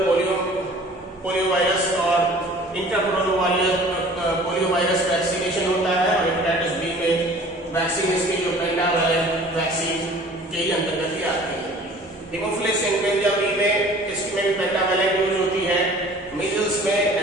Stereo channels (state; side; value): normal; both; correlation 0.48